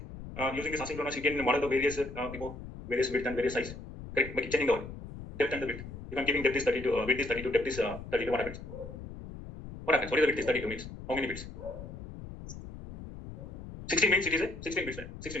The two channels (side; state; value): left; noise; rumble, 12 dB below the sound